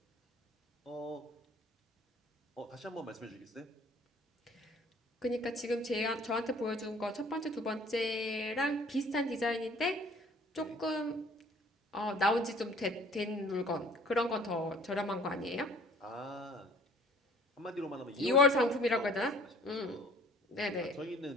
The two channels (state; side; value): normal; both; correlation 0.52